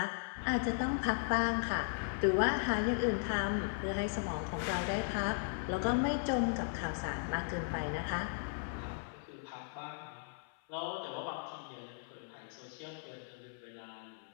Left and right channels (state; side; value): silent; right; 53 dB below the other